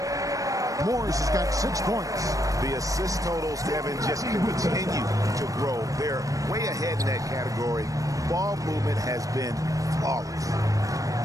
Morris has got 6 points. The assist totals, Kevin, just continue to grow. They're way ahead in that category. Ball movement has been flawless.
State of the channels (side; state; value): left; late; 0.16 ms